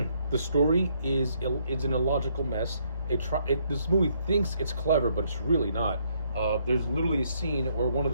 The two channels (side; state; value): both; inverted; correlation -0.71